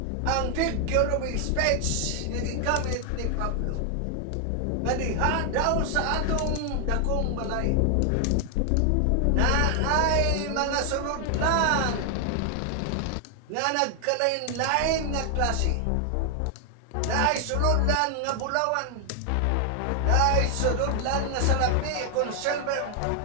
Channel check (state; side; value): different; both; correlation 0.00